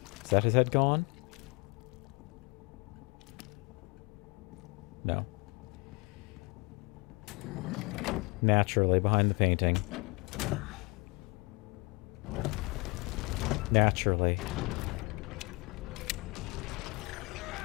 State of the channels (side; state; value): right; quieter; 27.1 dB